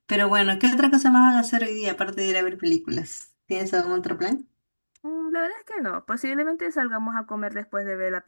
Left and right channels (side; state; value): both; inverted; correlation -1.00